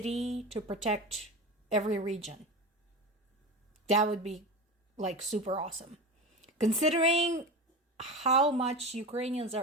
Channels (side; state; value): both; normal; correlation 0.25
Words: to protect every region. That would be like super awesome. Considering how much Ukrainians